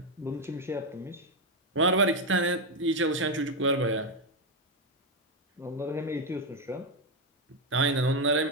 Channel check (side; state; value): both; normal; correlation 0.06